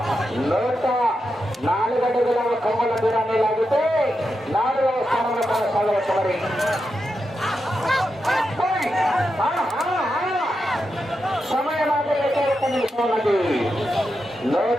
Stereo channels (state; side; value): normal; both; correlation 0.87